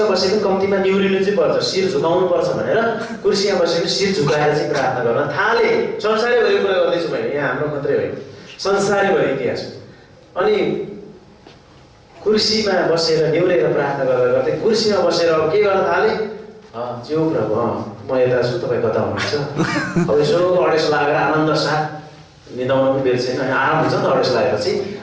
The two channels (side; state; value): both; identical; correlation 1.00